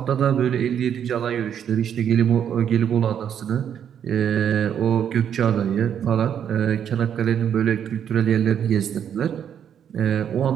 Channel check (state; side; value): quieter; left; 8.8 dB